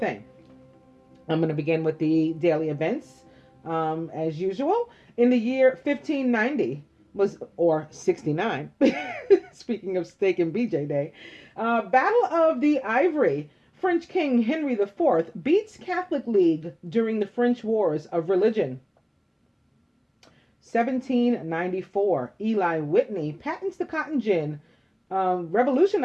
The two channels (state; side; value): identical; both; correlation 1.00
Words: thing. I'm going to begin with the daily events as usual. In the year 1590 or 69, speaking of Steak and BJ Day, Battle of the Ivory. French King Henry IV beats Catholic League during the French Wars of Religion. 1794, Eli Whitney patents the cotton gin,